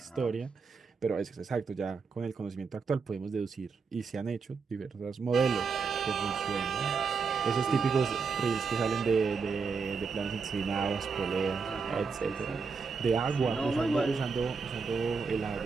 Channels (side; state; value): left; quieter; 5.1 dB